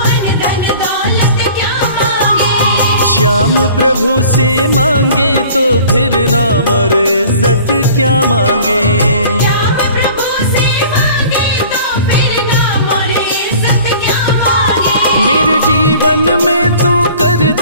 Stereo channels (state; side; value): inverted; both; correlation -0.47